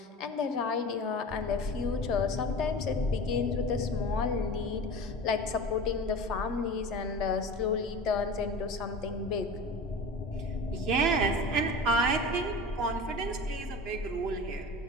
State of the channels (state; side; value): normal; both; correlation 0.34